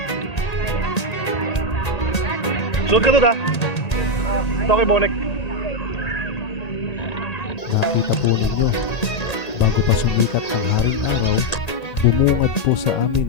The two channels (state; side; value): late; right; 1.8 ms